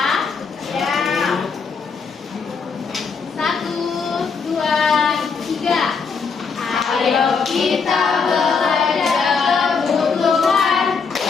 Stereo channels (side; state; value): right; quieter; 5.4 dB